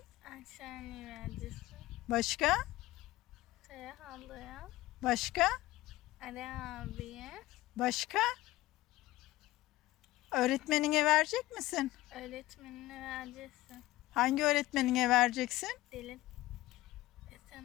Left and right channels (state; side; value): quieter; right; 17.4 dB